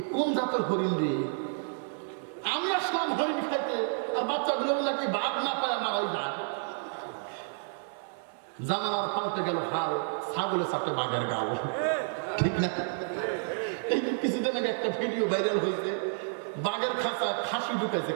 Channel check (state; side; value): silent; left; 58 dB below the other